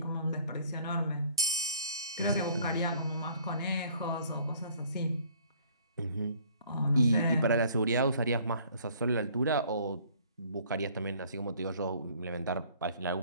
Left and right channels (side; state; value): both; inverted; correlation -0.56